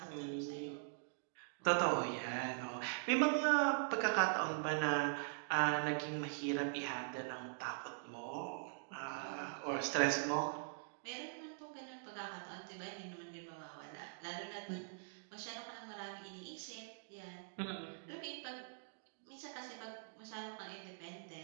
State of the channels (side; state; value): left; silent; digital silence